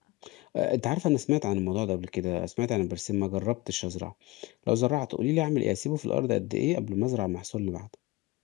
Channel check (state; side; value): quieter; right; 20.8 dB